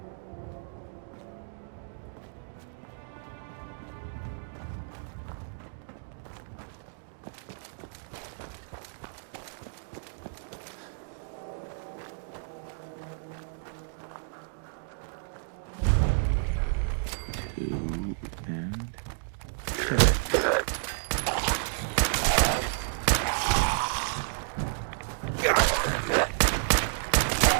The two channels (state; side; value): silent; left; digital silence